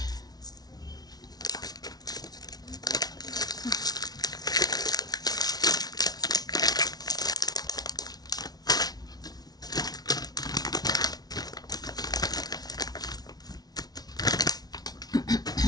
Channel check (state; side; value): late; right; 0.19 ms